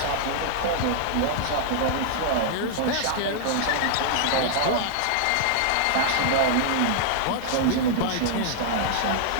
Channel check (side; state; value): both; different; correlation -0.01